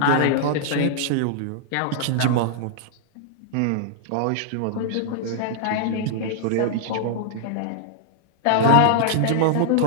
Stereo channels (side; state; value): both; different; correlation -0.01